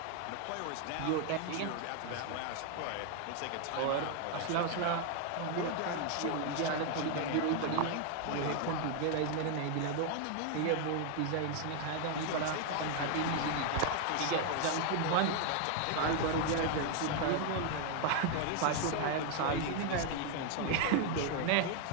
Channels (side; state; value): both; different; correlation 0.00